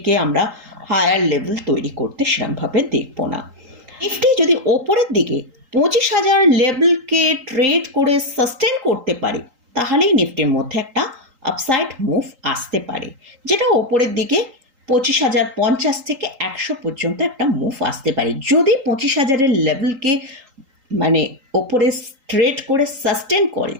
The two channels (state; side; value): late; left; 3.8 ms